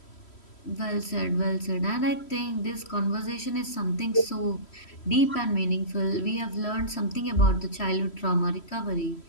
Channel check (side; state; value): right; late; 3.1 ms